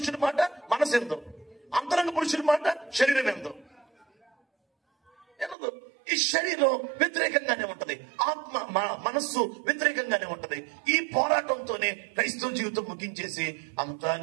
మాట మనసు ఎందు, అంతరంగ పురుషుడి మాట శరీరం ఎందు. ఈ శరీరం వ్యతిరేకంగానే ఉంటది, ఆత్మ మనస్సు వ్యతిరేకంగానే ఉంటది. ఈ పోరాటంతోనే క్రైస్తవ జీవితం ముగించేసి అంతా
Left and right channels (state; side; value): drops out; left; at 5.6 s